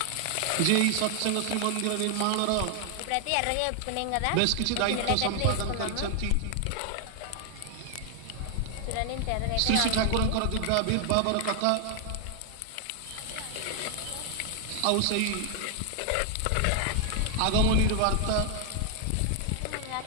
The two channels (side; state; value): both; different; correlation 0.00